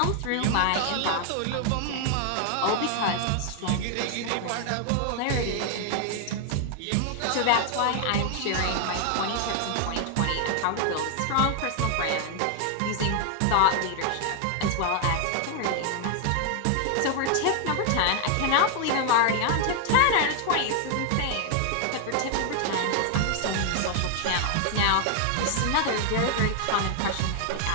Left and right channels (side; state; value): both; different; correlation 0.00